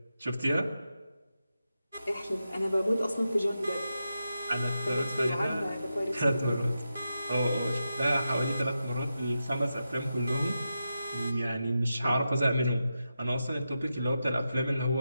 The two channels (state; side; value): inverted; both; correlation -0.89